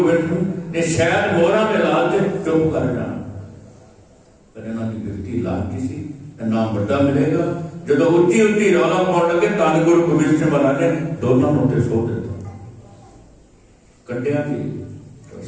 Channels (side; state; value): both; identical; correlation 1.00